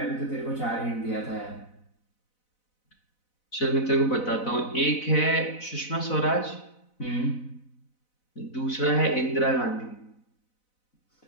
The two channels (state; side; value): late; right; 4.0 ms